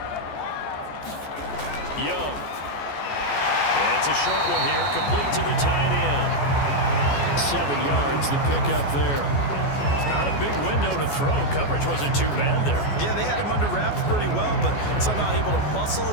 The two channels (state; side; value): late; right; 14 ms